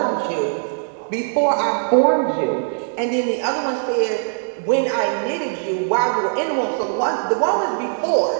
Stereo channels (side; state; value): left; silent; 65 dB below the other